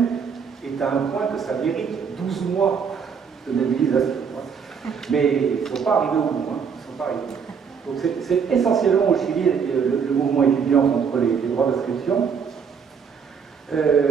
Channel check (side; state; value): left; quieter; 6.5 dB